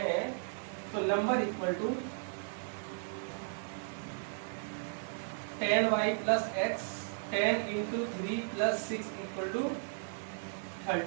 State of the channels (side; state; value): left; silent; digital silence